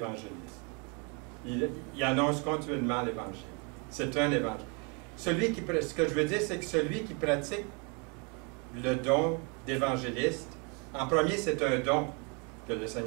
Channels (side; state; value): left; quieter; 33.6 dB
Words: Il annonce continuellement l'Évangile. C'est un évangile. Ce que je veux dire, c'est que celui qui pratique le don d'évangéliste, en premier, c'est un don que le